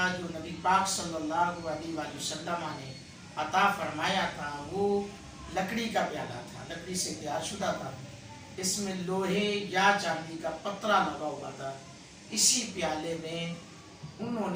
जो नबी पाक सल्लल्लाहु अलैहि वसल्लम ने अता फरमाया था वो लकड़ी का प्याला था, लकड़ी से तैयारशुदा था। इसमें लोहे या चांदी का पतरा लगा हुआ था। इसी प्याले में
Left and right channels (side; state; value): both; identical; correlation 1.00